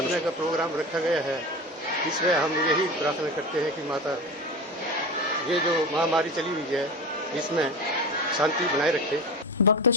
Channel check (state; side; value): normal; both; correlation 0.28